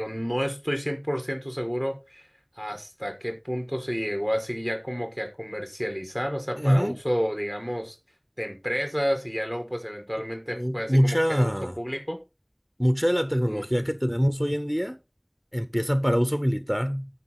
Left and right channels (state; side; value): identical; both; correlation 1.00